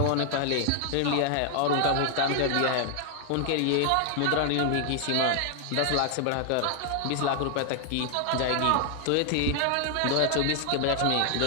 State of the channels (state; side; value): different; both; correlation 0.00